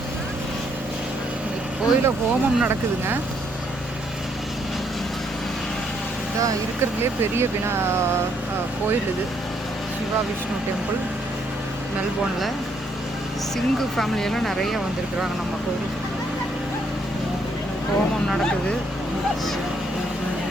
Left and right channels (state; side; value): normal; both; correlation 0.71